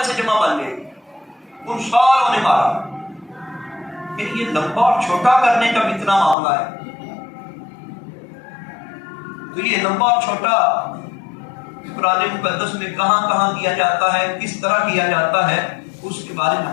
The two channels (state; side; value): drops out; right; at 6.4 s